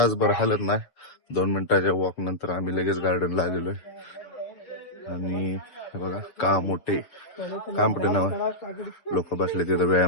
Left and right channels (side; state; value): right; late; 6.8 ms